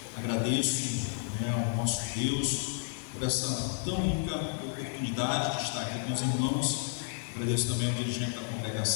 Agradeço ao nosso Deus por essa tão rica oportunidade de estar aqui com os irmãos. Agradeço também ao dirigente da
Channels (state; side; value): silent; right; 57 dB below the other